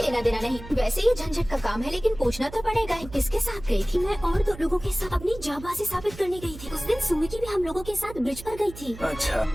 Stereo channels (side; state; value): right; noise; hum, 15 dB below the sound